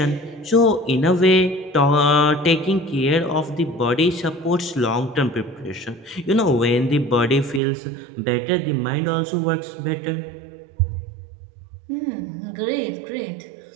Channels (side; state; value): left; drops out; at 7.6 s